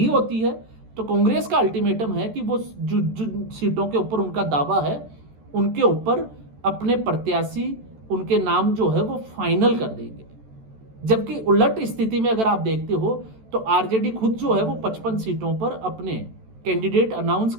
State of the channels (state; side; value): late; left; 14 ms